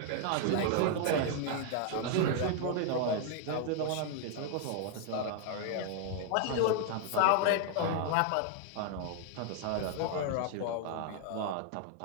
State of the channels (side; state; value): both; different; correlation 0.00